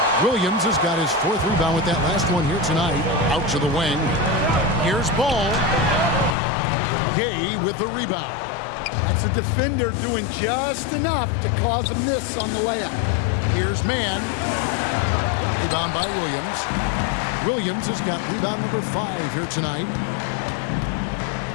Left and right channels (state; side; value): drops out; right; at 6.4 s